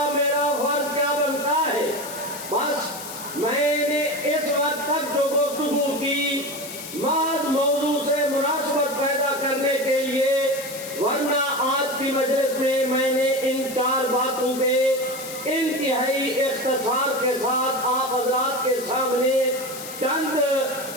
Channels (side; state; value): left; noise; hiss, 11 dB below the sound